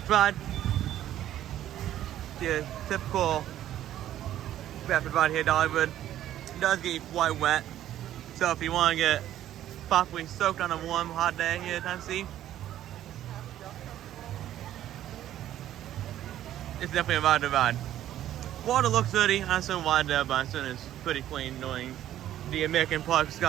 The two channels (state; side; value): quieter; left; 12.3 dB